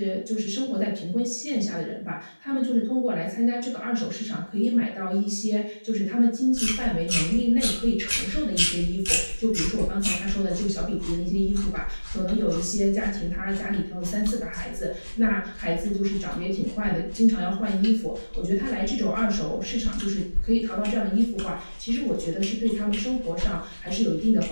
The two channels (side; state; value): both; inverted; correlation -1.00